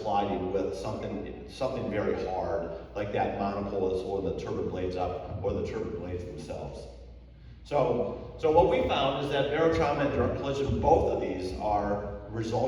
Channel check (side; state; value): both; identical; correlation 1.00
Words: colliding with something very hard, like that monopole that's holding the turbine blades up, or the turbine blades themselves. So what we found is that barotrauma and direct collision, both of these are